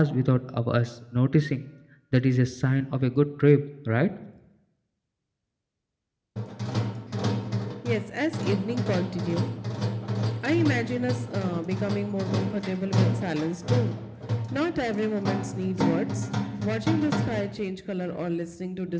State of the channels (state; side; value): identical; both; correlation 1.00